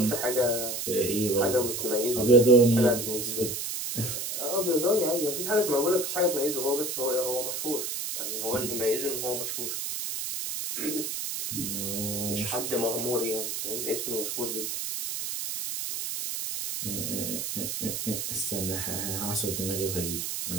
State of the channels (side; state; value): right; noise; hiss, 3 dB below the sound